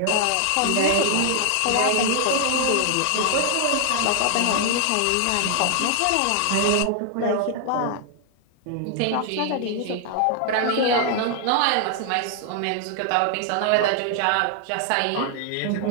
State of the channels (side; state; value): both; different; correlation 0.00